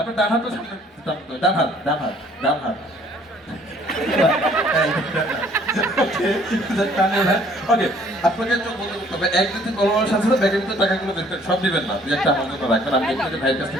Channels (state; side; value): normal; both; correlation 0.59